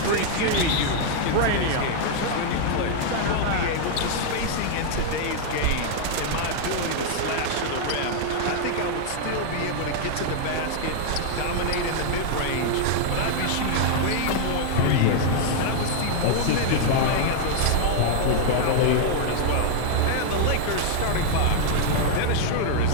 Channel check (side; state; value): both; different; correlation 0.00